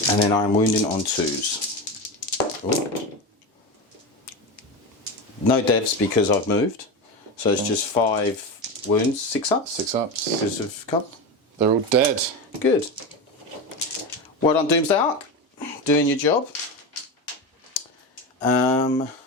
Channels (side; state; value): both; normal; correlation 0.20